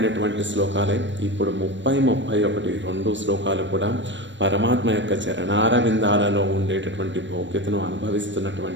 శ్లోకాలే. ఇప్పుడు 30, 2 శ్లోకాలు కూడా పరమాత్మ యొక్క చరణారవిందాలలో ఉండేటటువంటి భోగ్యతను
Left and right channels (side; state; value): left; late; 0.54 ms